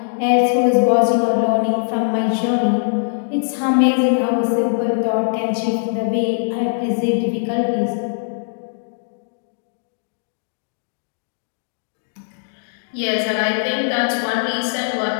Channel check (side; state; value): right; silent; digital silence